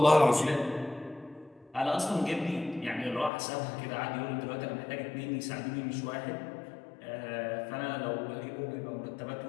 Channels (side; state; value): right; drops out; at 3.3 s